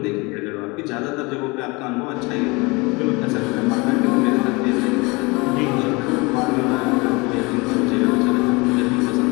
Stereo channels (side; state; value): right; quieter; 26.1 dB